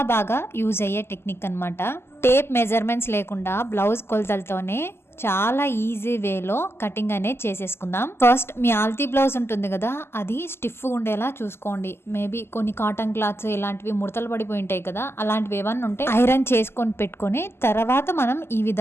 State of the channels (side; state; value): right; late; 0.12 ms